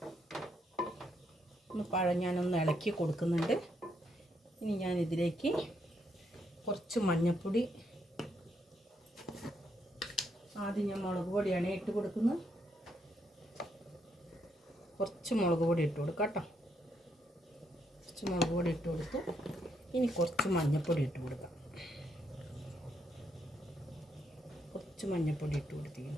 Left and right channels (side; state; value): both; normal; correlation 0.76